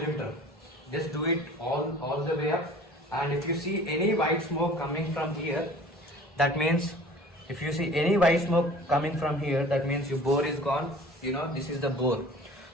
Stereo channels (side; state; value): both; normal; correlation 0.46